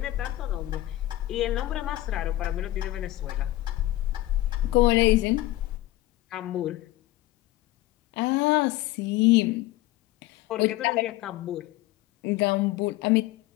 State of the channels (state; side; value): quieter; right; 16.5 dB